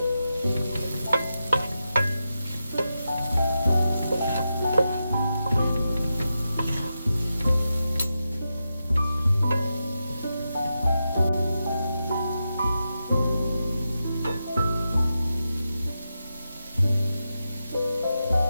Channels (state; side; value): inverted; both; correlation -0.89